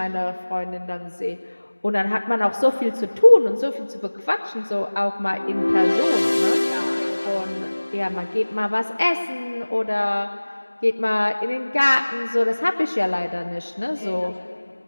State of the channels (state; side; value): inverted; both; correlation -1.00